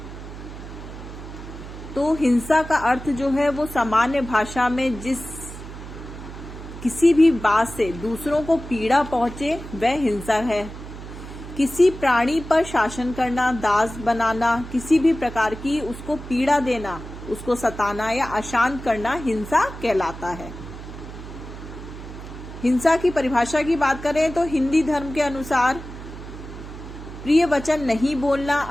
तो हिंसा का अर्थ जो है वो सामान्य भाषा में किसी भी बात से दूसरों को पीड़ा पहुंचे वह हिंसा है। किसी प्राणी पर शासन करना, दास बनाना, किसी भी प्रकार की उसको पीड़ा देना, उसको सताना या अशांत करना हिंसा कहलाता है। हिंसा की परिभाषा की बात करें तो हिंदी धर्म के अनुसार प्रिय वचन नहीं बोलना,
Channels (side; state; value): right; noise; hum, 12 dB below the sound